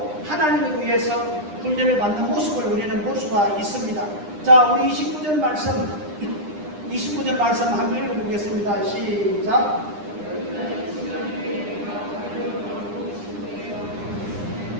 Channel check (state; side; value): late; left; 9.9 ms